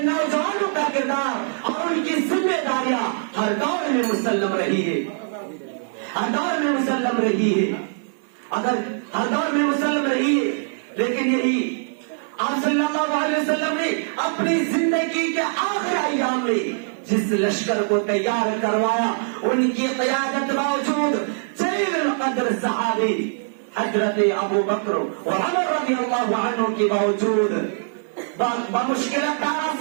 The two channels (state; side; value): silent; left; 64 dB below the other